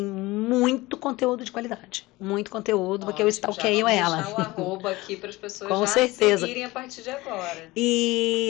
muito conteúdo de qualidade. Muito conteúdo, porque eu stalkeio ela. Vou deixar o arroba aqui para as pessoas com já certeza seguirem a partir de agora.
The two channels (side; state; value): right; quieter; 20.5 dB